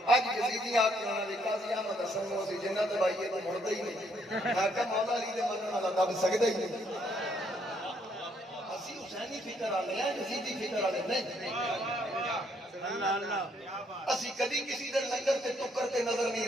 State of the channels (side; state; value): both; normal; correlation 0.70